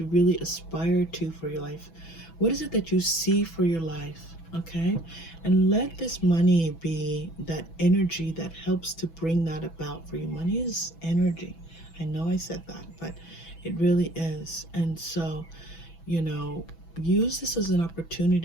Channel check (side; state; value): right; late; 6.1 ms